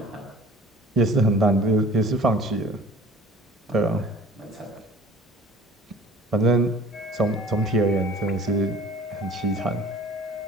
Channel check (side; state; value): both; normal; correlation 0.46